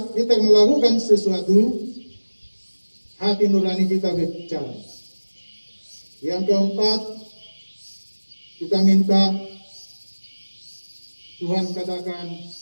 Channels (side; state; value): both; inverted; correlation -1.00